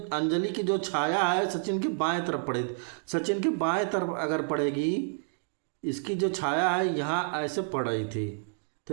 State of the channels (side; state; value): left; silent; digital silence